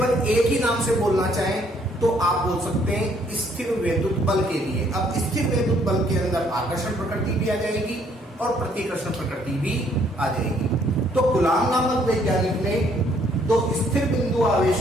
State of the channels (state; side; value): normal; both; correlation 0.65